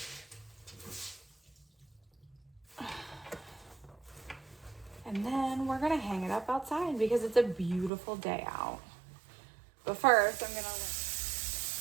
And then we're gonna hang it up outside because it's a beautiful day out. But first, I'm gonna...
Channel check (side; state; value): left; drops out; at 7.9 s